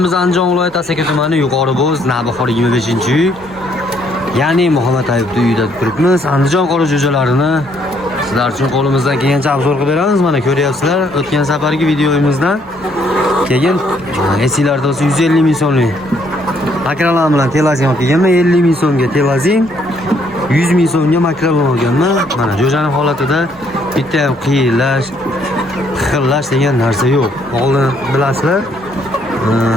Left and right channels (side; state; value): both; normal; correlation 0.68